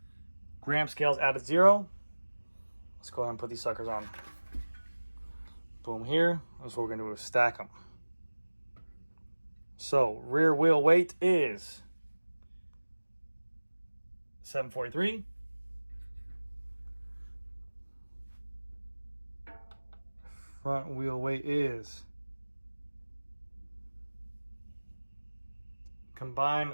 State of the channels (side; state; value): both; inverted; correlation -1.00